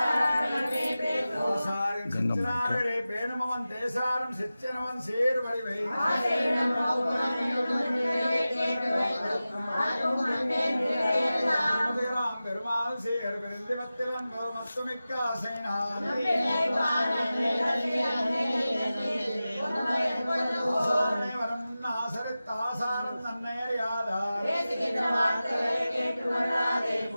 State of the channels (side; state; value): both; inverted; correlation -0.95